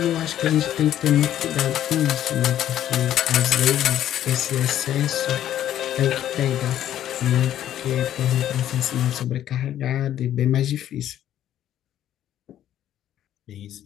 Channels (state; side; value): quieter; right; 11.5 dB